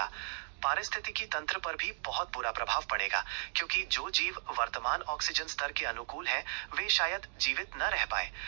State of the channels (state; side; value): silent; left; digital silence